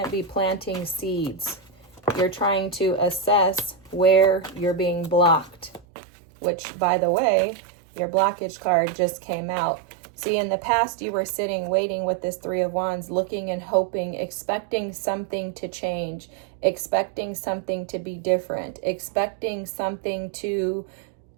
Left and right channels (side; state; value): left; drops out; at 5.9 s